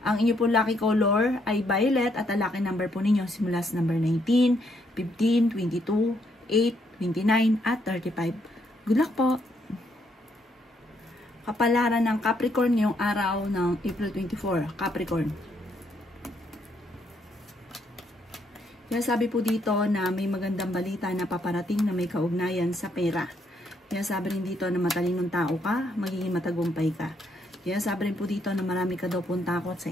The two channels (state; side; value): normal; both; correlation 0.73